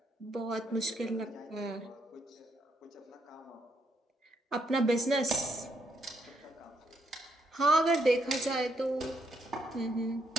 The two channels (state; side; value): normal; both; correlation 0.75